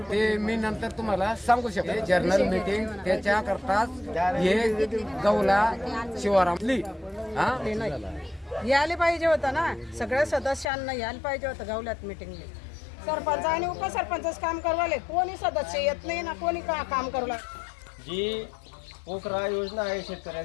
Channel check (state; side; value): drops out; right; at 10.7 s